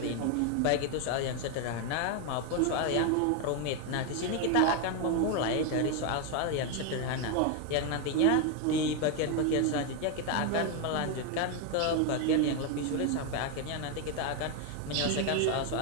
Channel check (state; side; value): different; both; correlation 0.01